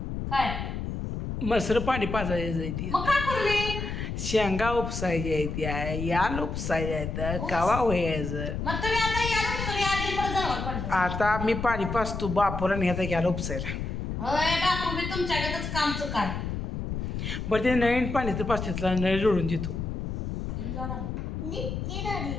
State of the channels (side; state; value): left; noise; rumble, 4 dB below the sound